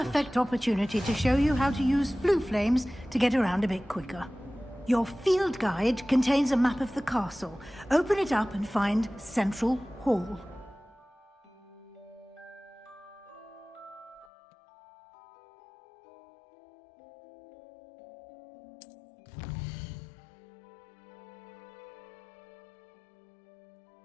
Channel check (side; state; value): right; drops out; at 14.2 s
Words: opportunity to show you how to use flue flames to get around a bit quicker. Your field guide contains a map of the castle. Open it up and find Central Hall.